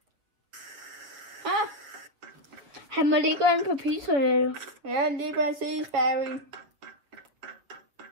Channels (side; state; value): left; late; 7.0 ms